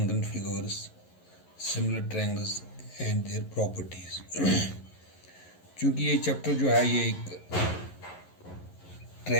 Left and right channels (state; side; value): late; right; 11 ms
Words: figures, similar triangles and their properties. चूँकि ये चैप्टर जो है ये एक